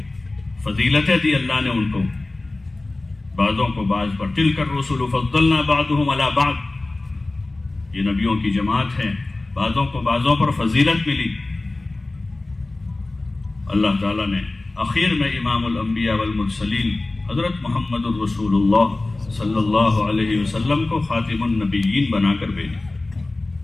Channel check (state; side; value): quieter; right; 3.0 dB